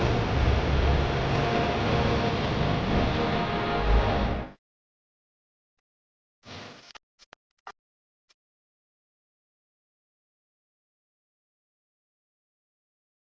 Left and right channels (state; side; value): identical; both; correlation 1.00